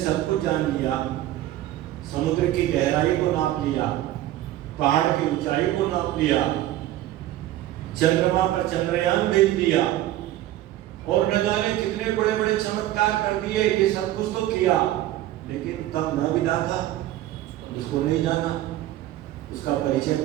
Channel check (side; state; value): left; quieter; 14.2 dB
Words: कुछ जान लिया, समुद्र की गहराई को नाप लिया, पहाड़ की ऊंचाई को नाप लिया, चंद्रमा पर चंद्रयान भेज दिया और न जाने कितने बड़े बड़े चमत्कार कर दिए। ये सब कुछ तो किया, लेकिन तब न विदाथा, उसको नहीं जाना, उसका परिचय